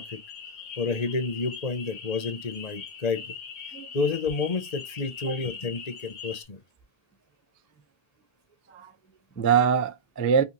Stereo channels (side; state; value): right; late; 1.8 ms